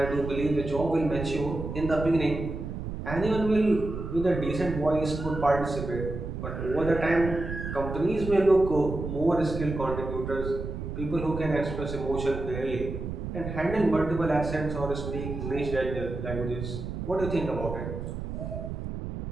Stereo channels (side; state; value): right; noise; rumble, 6 dB below the sound